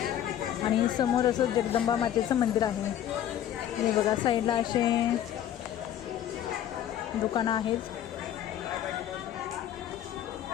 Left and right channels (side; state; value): right; quieter; 10.9 dB